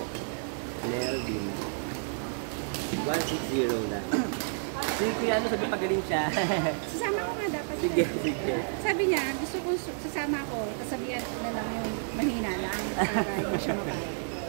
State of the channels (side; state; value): left; silent; digital silence